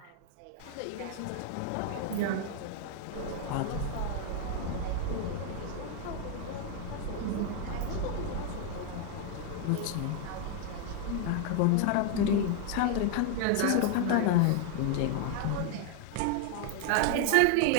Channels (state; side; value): different; both; correlation 0.00